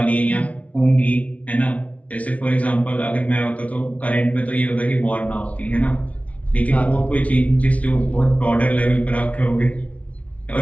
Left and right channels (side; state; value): right; late; 0.066 ms